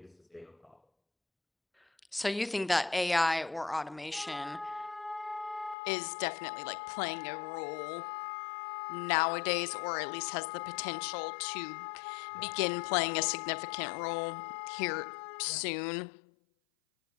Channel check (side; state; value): right; drops out; at 5.8 s